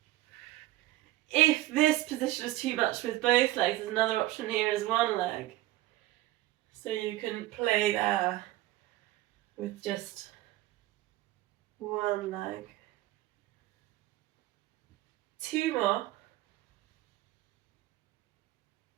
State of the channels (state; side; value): quieter; left; 16.6 dB